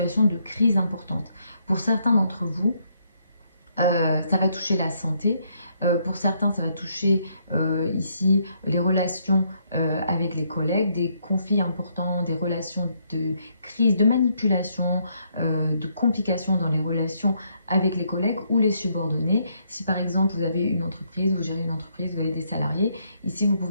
de crise importantes. Pour certains d'entre vous, ça va toucher la santé. Pour certains, ça va toucher ici les relations avec les collègues, des conflits importants, des relations de crise, de manipulation, de complications dans les relations avec les collègues ou les subordonnés. Si par exemple vous avez une entreprise, vous gérez une entreprise, vous avez des salariés, ici vous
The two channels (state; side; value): inverted; both; correlation -0.73